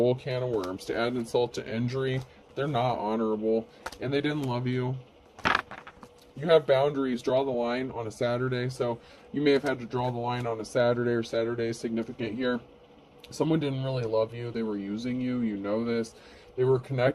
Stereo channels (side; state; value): both; identical; correlation 1.00